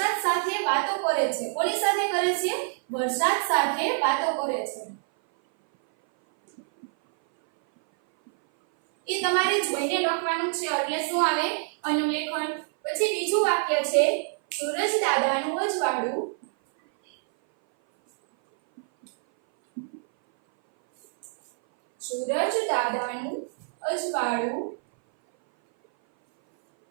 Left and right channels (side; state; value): left; silent; 58 dB below the other